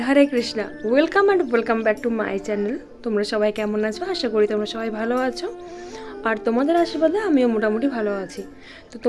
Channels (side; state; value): both; identical; correlation 1.00